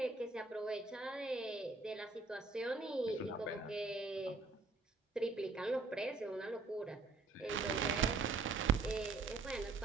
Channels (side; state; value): left; quieter; 3.9 dB